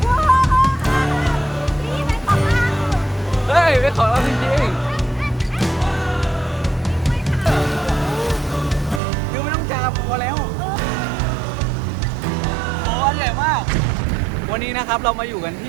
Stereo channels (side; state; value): left; drops out; at 9.0 s